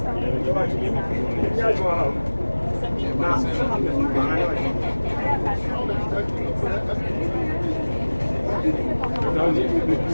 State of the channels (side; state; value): both; inverted; correlation -1.00